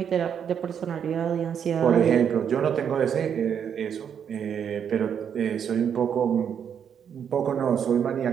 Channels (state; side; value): quieter; left; 8.0 dB